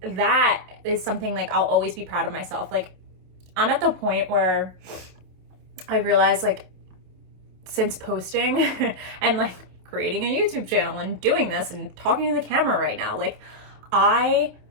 that is something like I'll always be proud of myself. Like I'm at the point where I realized like since posting and like creating a YouTube channel and doing this and talking to the camera right now, like I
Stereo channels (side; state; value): left; late; 27 ms